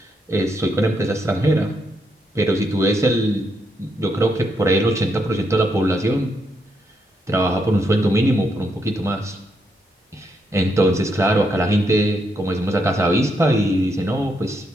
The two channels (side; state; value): both; normal; correlation 0.78